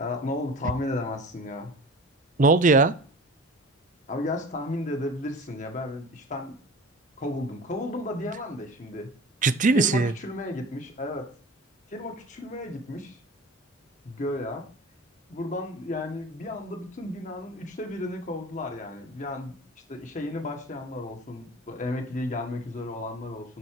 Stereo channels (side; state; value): both; normal; correlation 0.38